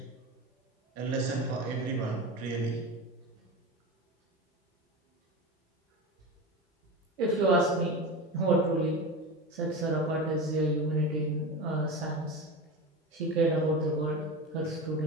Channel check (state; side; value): normal; both; correlation 0.25